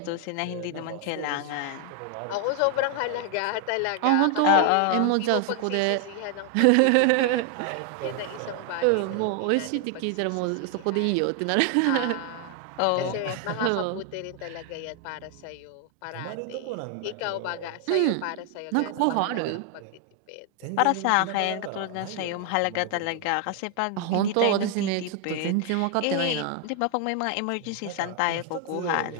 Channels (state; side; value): different; both; correlation 0.00